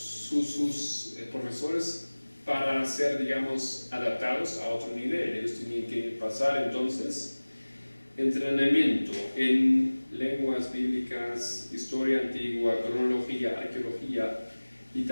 profesores para ser, digamos, adaptados a otro nivel. Ellos tenían que pasar entonces entrenamiento en lenguas bíblicas, historia antigua, cronología, arqueología y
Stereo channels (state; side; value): inverted; both; correlation -1.00